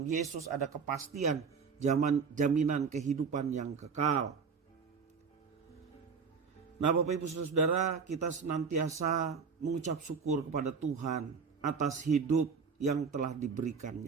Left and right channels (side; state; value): left; quieter; 5.7 dB